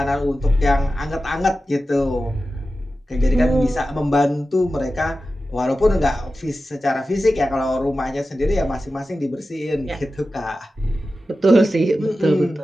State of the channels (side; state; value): both; normal; correlation 0.93